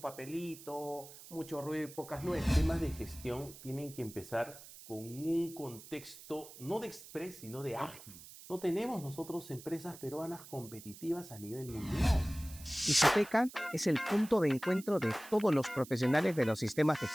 mucho ruido y pocas nueces. Temas de gestión tienen que empezar con un contexto no de express, sino de ágil. No tenemos nosotros empresas peruanas competitivas a nivel mundial. Isoteca es el punto de encuentro de todos los profesionales de los sistemas de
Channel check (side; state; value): right; noise; hiss, 17 dB below the sound